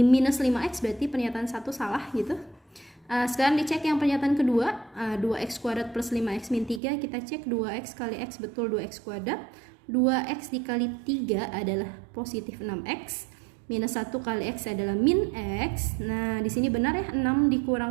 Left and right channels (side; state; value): left; drops out; at 6.8 s